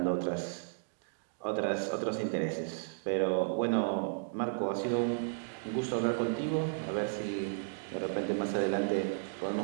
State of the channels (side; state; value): left; silent; digital silence